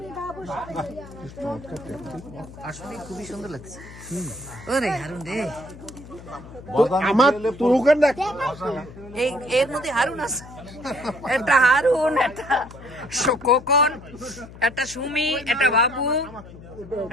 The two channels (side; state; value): left; noise; hum, 17 dB below the sound